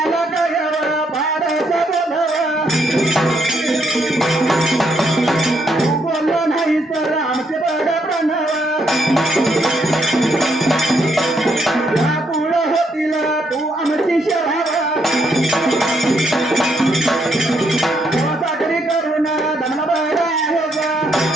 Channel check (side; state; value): both; normal; correlation 0.75